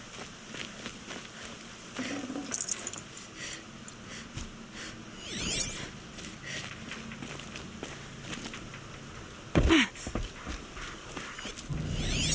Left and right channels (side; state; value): both; identical; correlation 1.00